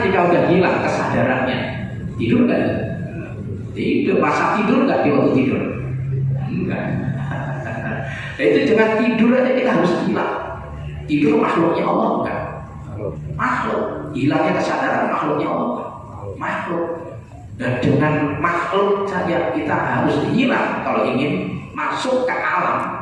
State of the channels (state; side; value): identical; both; correlation 1.00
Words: jika udah hilang kesadarannya, tidur nggak? Tidur. Masa tidur nggak di waktu tidur? Enggak. Nah, itu dengan tidur aja kita harus hilang. Tidur makhluknya Allah bukan? Makhluk. Hilangnya kesadaran makhluknya Allah bukan? Makhluk. Dan dengan makhluk saja kita harus hilang kalau ingin masuk ke